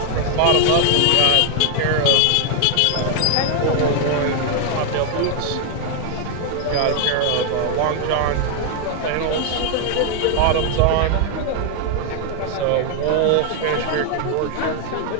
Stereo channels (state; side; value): different; both; correlation 0.00